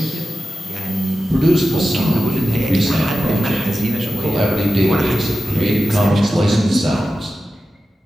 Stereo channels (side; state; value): both; normal; correlation 0.93